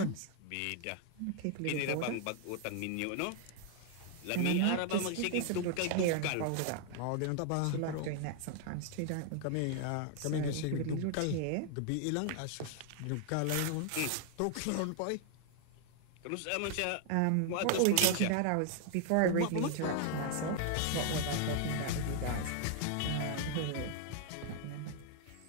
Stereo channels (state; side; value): different; both; correlation 0.00